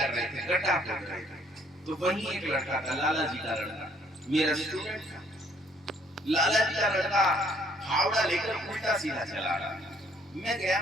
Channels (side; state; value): both; normal; correlation 0.63